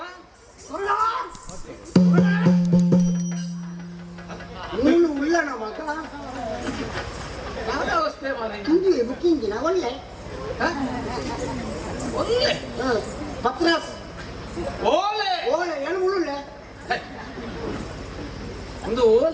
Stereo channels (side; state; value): both; identical; correlation 1.00